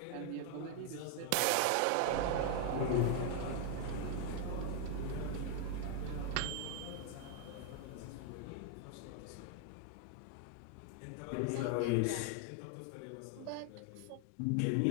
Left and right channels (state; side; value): different; both; correlation 0.00